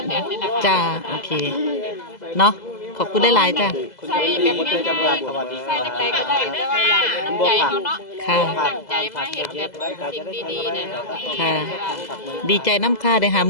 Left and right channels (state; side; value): late; right; 2.0 ms